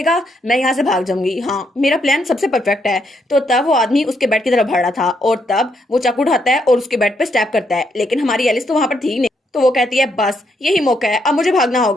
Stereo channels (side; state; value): both; normal; correlation 0.76